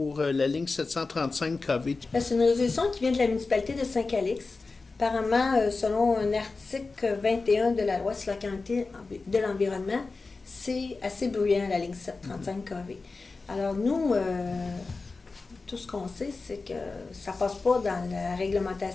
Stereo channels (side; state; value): right; quieter; 3.9 dB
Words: la ligne 735 kV. C'est une résolution qui vient de la municipalité de Saint-Calix. Apparemment, selon un article 21 de la loi sur la qualité de l'environnement, c'est assez bruyant, la ligne 735 kV. Alors nous, tout ce qu'on sait, c'est que ça ne passe pas dans la